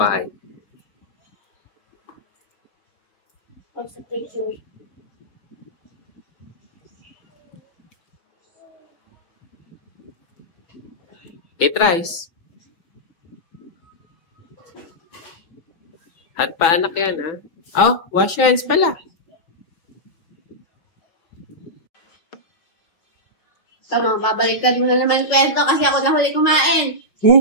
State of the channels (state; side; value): late; right; 6.0 ms